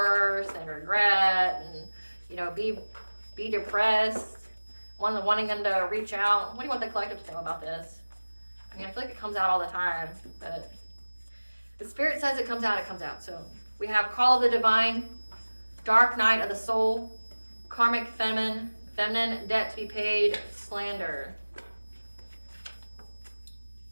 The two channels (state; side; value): inverted; both; correlation -1.00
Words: and regret and, you know, be depressed, wanting them to reach out? What do you want the collective to know about this? I mean, I feel like it comes out all the time, but the Spirit says it comes out. So we have Call of the Divine, Dark Night of the Soul, Karmic Feminine, Debt to be Paid, Slander.